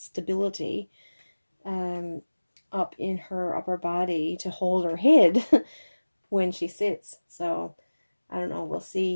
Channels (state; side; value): inverted; both; correlation -1.00